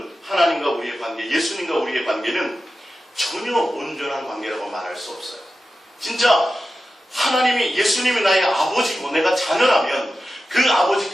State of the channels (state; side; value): normal; both; correlation 0.92